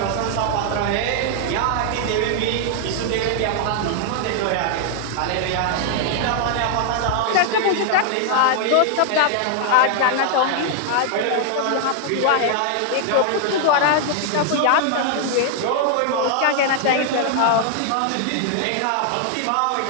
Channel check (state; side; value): different; both; correlation 0.00